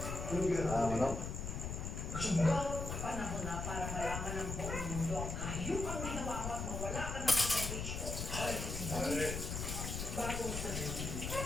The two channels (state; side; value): noise; left; rumble, 4 dB below the sound